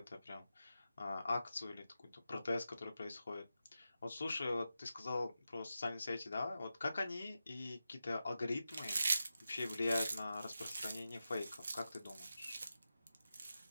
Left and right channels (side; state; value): both; inverted; correlation -0.91